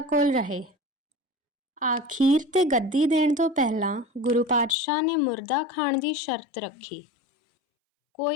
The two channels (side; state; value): right; drops out; at 4.8 s